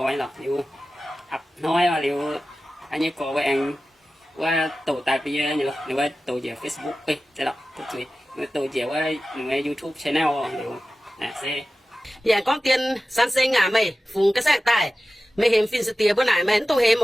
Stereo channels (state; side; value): normal; both; correlation 0.95